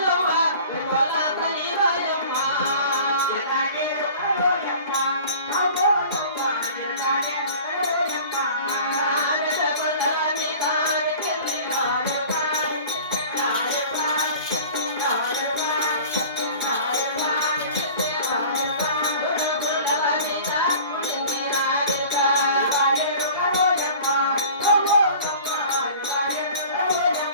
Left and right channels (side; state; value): both; inverted; correlation -0.44